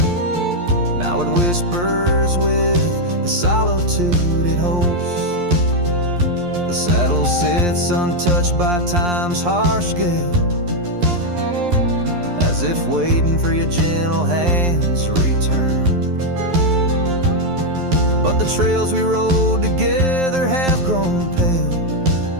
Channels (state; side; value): late; left; 11 ms